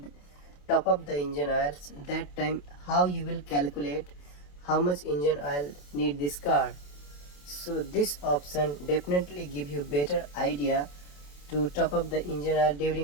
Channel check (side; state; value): right; late; 28 ms